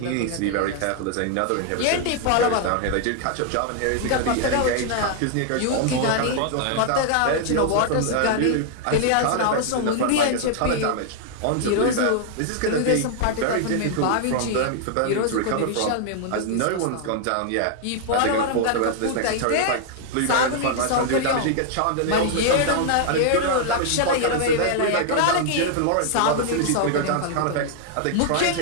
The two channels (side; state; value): both; different; correlation 0.00